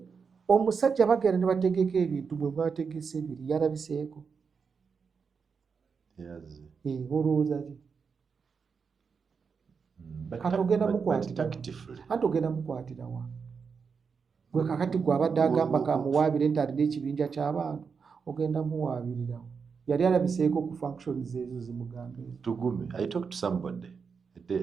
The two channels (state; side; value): quieter; left; 5.7 dB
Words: omusajja bagenda ne bategeka ebintu bwe bategese ebiri yalabiseeko. Olowooza ki? Kati ogenda mukwatira wa? Gwe kakati gwe abadde agamba kamuwaabire nti alina ekibinja ky'abantu, ogenda muwaabirira wa? Yali alabiseeko ku functions ezo zimugambe. Tugume, I talked to somebody the day